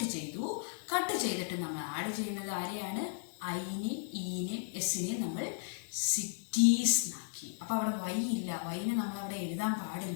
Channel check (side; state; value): right; silent; digital silence